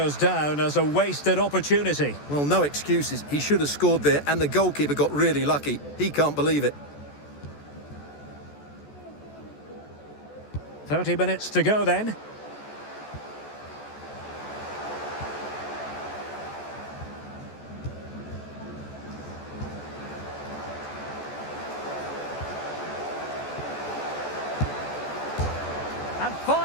down as a wasted opportunity. Well, no excuses. He should have scored there, and the goalkeeper got really lucky. He can't believe it. 30 minutes to go then. And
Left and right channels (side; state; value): right; late; 14 ms